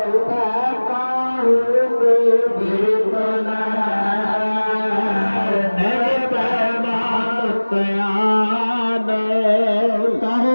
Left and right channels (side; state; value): both; inverted; correlation -1.00